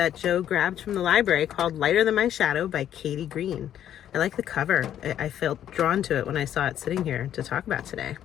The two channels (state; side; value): quieter; right; 10.6 dB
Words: Joe grabbed from the library called Lighter Than My Shadow by Katie Green. I like the cover. I felt drawn to it when I saw it sitting here to talk about today.